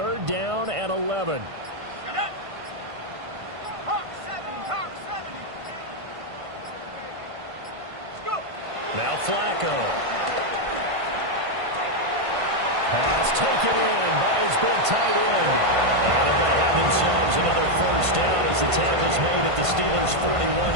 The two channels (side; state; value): left; late; 1.5 ms